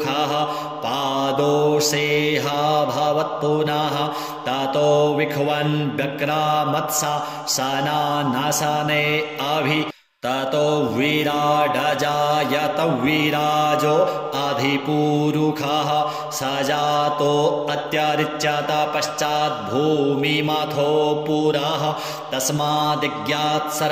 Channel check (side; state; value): both; identical; correlation 1.00